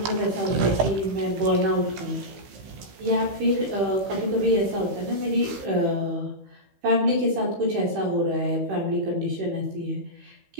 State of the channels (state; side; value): late; left; 16 ms